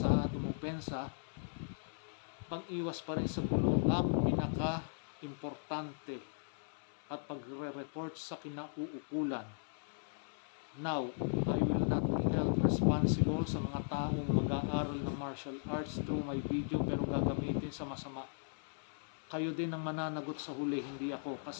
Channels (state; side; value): silent; right; digital silence